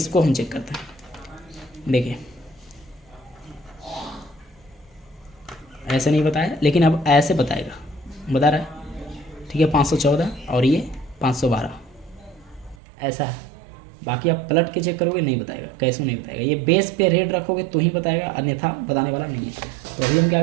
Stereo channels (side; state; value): left; drops out; at 12.8 s